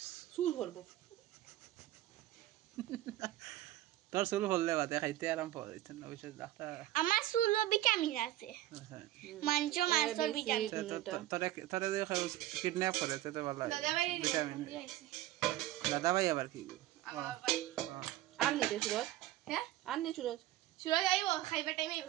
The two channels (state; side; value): quieter; left; 14.9 dB